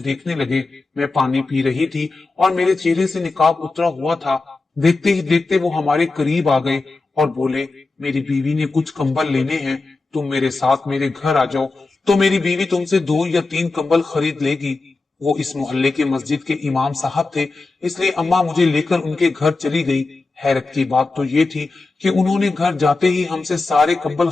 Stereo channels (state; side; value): quieter; right; 3.5 dB